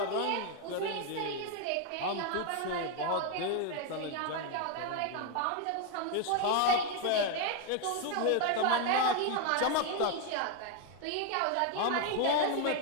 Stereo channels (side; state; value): both; different; correlation 0.01